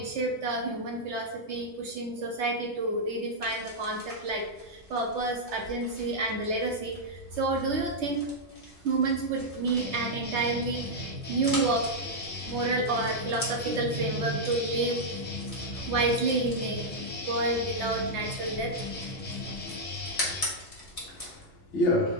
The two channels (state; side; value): normal; both; correlation -0.04